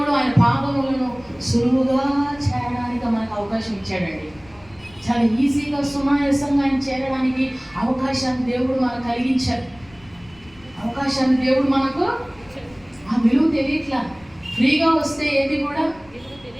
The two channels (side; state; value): left; noise; rumble, 25 dB below the sound